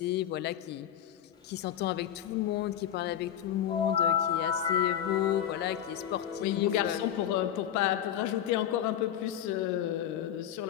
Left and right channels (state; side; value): quieter; right; 10.4 dB